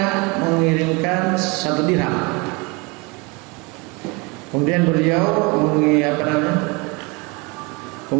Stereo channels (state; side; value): quieter; left; 27.5 dB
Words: mengirimkan 1 dirham. Kemudian beliau